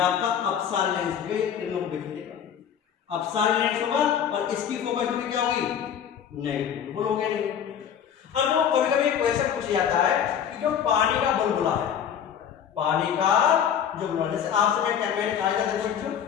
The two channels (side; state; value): right; quieter; 8.6 dB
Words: अपसारी लेंस हो गया, ये किरणों को बिखेरेगा, अपसारी लेंस होगा, और इसकी फोकस दूरी क्या होगी, नेगेटिव, बोलोगे नहीं। अब जो कभी कभी क्वेश्चन पूछा जाता है कि जो पानी का बुलबुला है, पानी का जो बुलबुला, जैसे आपसे मैं क्या मैंने कहा था, देखो बच्चों,